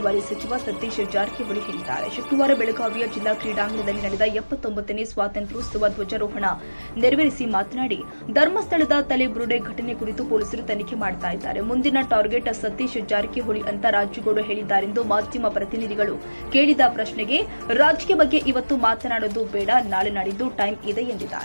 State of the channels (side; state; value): both; inverted; correlation -1.00